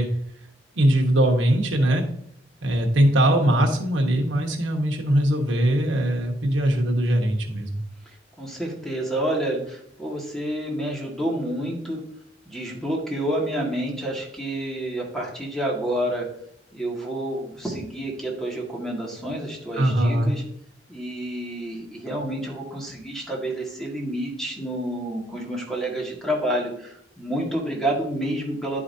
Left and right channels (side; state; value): both; normal; correlation 0.72